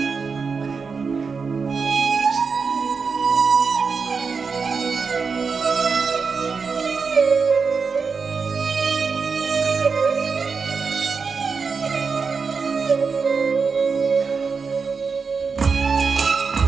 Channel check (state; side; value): quieter; left; 5.1 dB